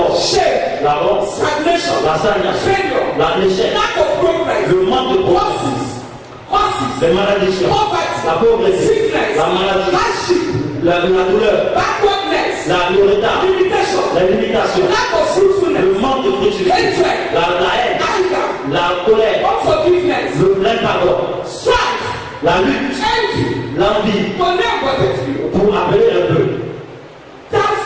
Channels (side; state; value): both; identical; correlation 1.00